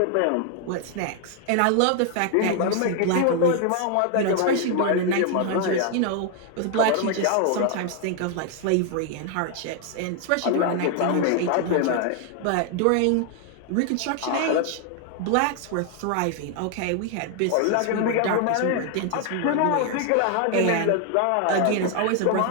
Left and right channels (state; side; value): different; both; correlation 0.00